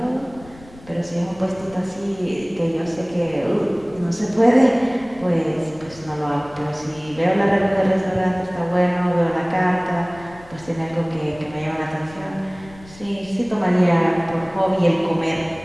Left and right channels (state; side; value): noise; left; rumble, 22 dB below the sound